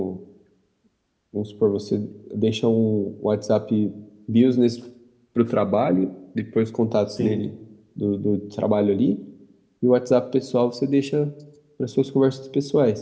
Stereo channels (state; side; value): identical; both; correlation 1.00